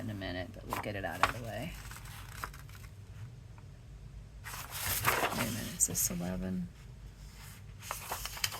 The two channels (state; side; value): identical; both; correlation 1.00